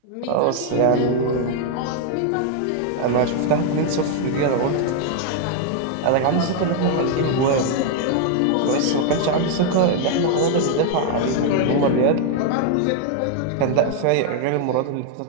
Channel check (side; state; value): both; different; correlation 0.00